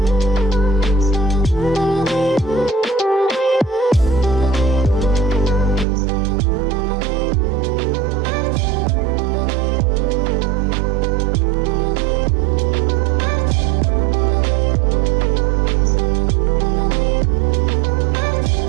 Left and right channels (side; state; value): left; drops out; at 5.9 s